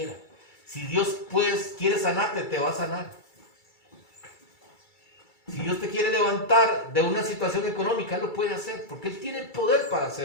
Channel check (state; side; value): late; right; 2.3 ms